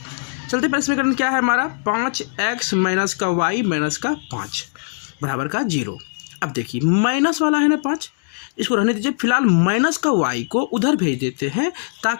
चलते पहले समीकरण क्या है हमारा, 5x माइनस का y माइनस का 5 बराबर का 0। अब देखिए माइनस वाला है ना 5, इसको रहने दीजिए। फिलहाल माइनस का y को उधर भेज देते हैं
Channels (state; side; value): silent; right; digital silence